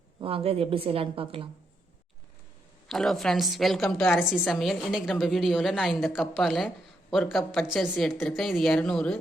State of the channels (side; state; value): both; normal; correlation 0.79